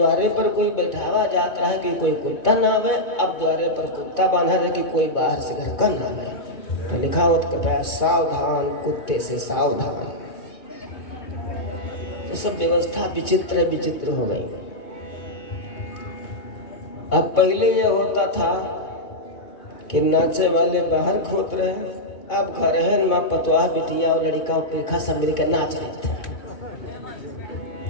पर कोई बैठावा जाता है कि कोई कुत्ता ना आवे, अब द्वारे पर कुत्ता बांधा है कि कोई बाहर से घर का ना आवे। तो लिखा होता है सावधान कुत्ते से सावधान। तो सब व्यवस्था विचित्र विचित्र हो गई। अब पहले ये होता था कि नाचे वाले बाहर खोत रहे, अब घर है माँ पतवाह बिटिया और लड़का पेखा सब मिलकर नाच रहे थे।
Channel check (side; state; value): right; late; 2.6 ms